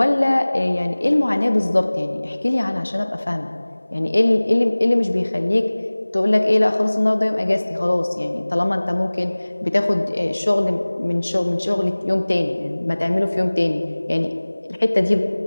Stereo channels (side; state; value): both; inverted; correlation -1.00